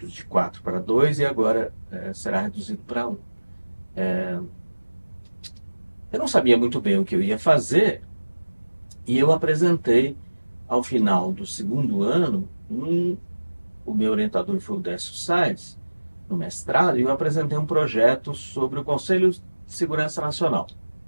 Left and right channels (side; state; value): both; inverted; correlation -1.00